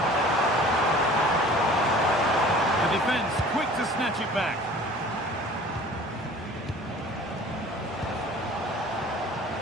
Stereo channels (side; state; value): both; normal; correlation 0.46